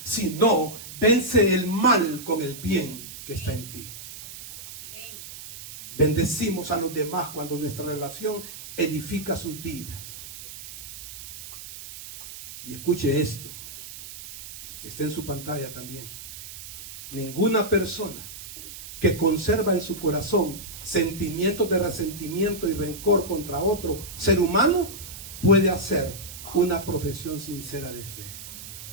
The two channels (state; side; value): noise; right; hiss, 13 dB below the sound